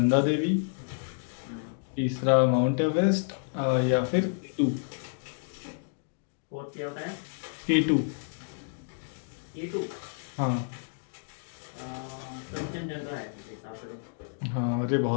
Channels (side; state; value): right; silent; digital silence